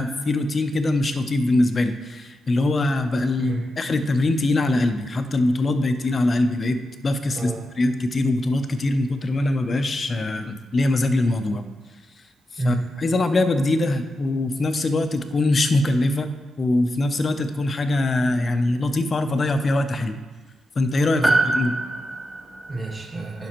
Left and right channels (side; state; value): both; normal; correlation 0.89